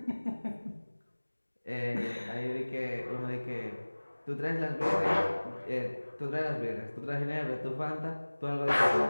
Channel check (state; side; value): inverted; both; correlation -1.00